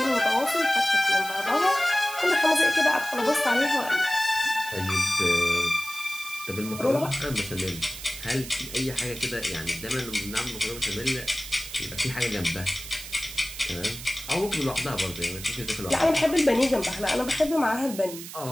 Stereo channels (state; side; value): noise; right; hiss, 12 dB below the sound